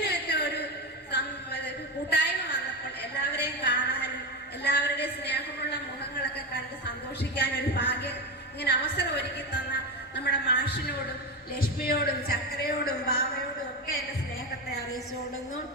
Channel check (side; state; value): both; normal; correlation 0.17